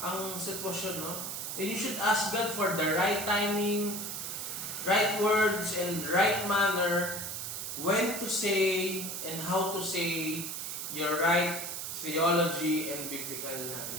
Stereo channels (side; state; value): right; noise; hiss, 5 dB below the sound